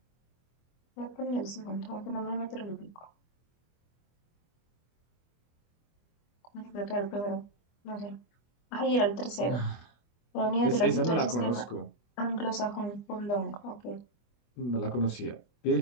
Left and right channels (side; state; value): right; late; 24 ms